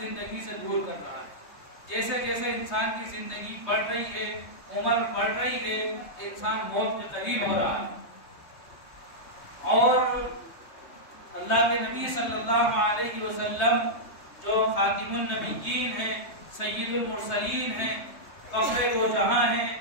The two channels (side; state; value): right; late; 3.3 ms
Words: سے دور کر رہا ہے۔ جیسے جیسے انسان کی زندگی بڑھ رہی ہے، عمر بڑھ رہی ہے، انسان موت کے قریب ہو رہا ہے۔ اور اللہ کے نبی صلی اللہ علیہ وسلم جو خاتم النبیین ہیں، سید المرسلین ہیں، فخر دو جہاں ہیں،